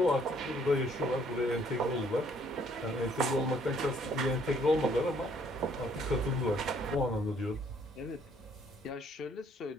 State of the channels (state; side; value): normal; both; correlation 0.64